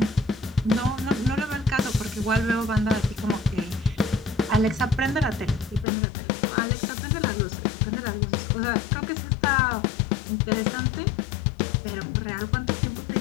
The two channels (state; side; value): drops out; right; at 5.9 s